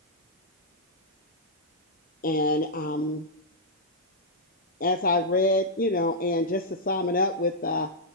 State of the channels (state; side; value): normal; both; correlation -0.08